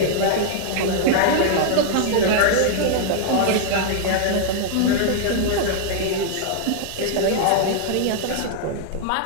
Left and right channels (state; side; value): different; both; correlation -0.01